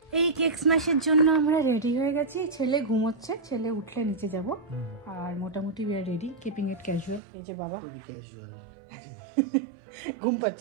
এই কেক স্ম্যাশের জন্য আমরা রেডি হয়ে গেছি, ছেলে ঘুমোচ্ছে, ছেলে উঠলে নিচে যাব। আর মোটামুটি we are ready, keeping it casual. এই যে বাবা ঘুম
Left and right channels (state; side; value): drops out; left; at 7.2 s